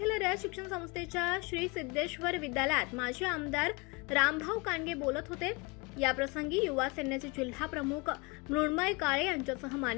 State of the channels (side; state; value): right; quieter; 27.9 dB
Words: रयत शिक्षण संस्थेच्या श्री सिद्धेश्वर विद्यालयात माजी आमदार रामभाऊ कांडगे बोलत होते. याप्रसंगी युवा सेनेचे जिल्हा प्रमुख मृण्मय काळे यांच्यासह